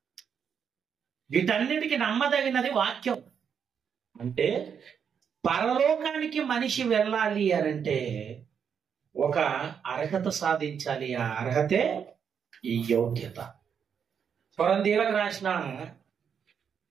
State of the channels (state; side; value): quieter; left; 7.3 dB